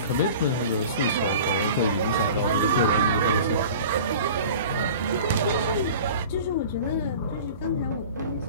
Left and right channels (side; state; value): both; inverted; correlation -0.40